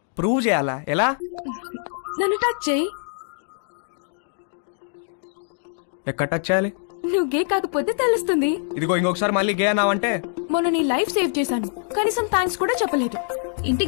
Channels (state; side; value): silent; right; digital silence